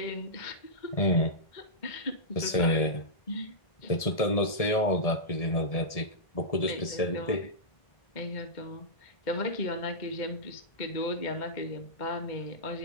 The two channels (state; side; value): late; right; 1.7 ms